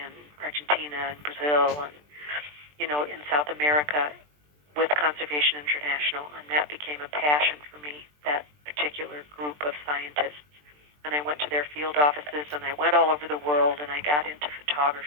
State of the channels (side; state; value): left; late; 20 ms